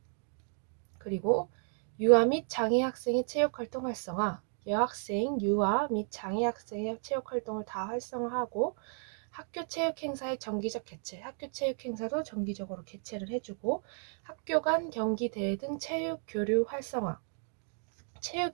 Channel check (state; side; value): silent; left; 56 dB below the other